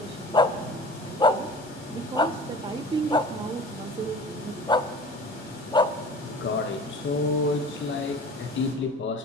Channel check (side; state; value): both; normal; correlation 0.41